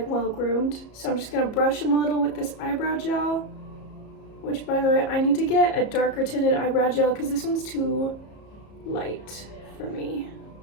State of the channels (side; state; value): right; late; 34 ms